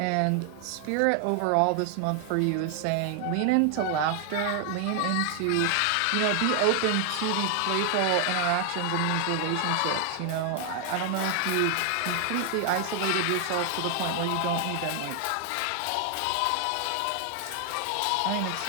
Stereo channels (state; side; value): different; both; correlation 0.00